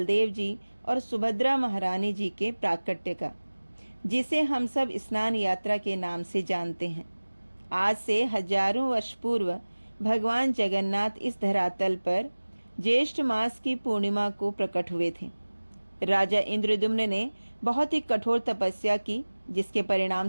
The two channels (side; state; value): both; inverted; correlation -1.00